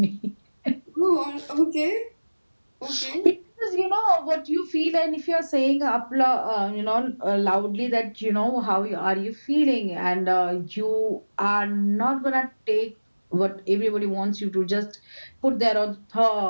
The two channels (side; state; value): both; inverted; correlation -1.00